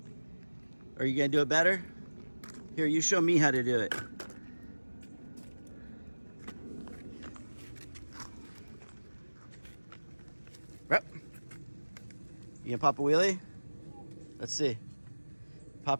Are you gonna do it better? Here, you show me how to do it. Rep. You gonna pop a wheelie? Let's see.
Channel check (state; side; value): inverted; both; correlation -1.00